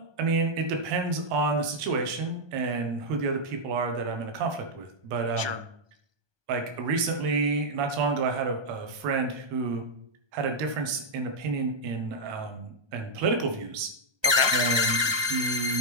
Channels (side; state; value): left; late; 1.3 ms